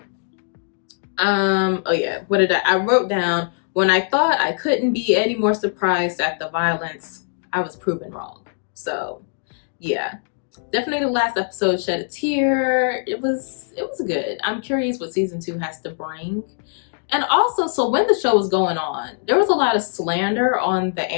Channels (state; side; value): silent; right; digital silence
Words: Oh yeah, what did I wrote down, when I thought I couldn't be any more surprised at the violence, I was proven wrong. So yeah, definitely the last episode shed a tear. It was good. I'm curious what season 2 has to bring. And also, so when the show was going on, there was a lot of slander on the